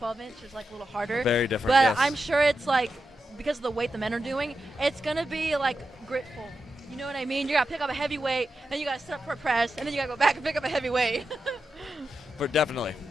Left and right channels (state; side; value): normal; both; correlation 0.89